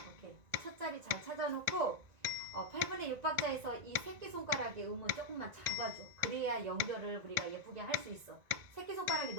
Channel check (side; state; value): left; late; 1.9 ms